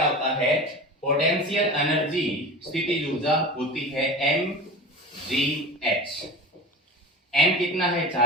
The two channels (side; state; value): both; normal; correlation 0.32